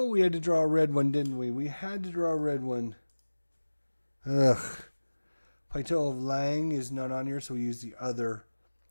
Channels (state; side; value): inverted; both; correlation -1.00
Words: we had to draw a red one, didn't we? We had to draw a red one. Ugh. Plateau of Lang is not on here, so we use the other.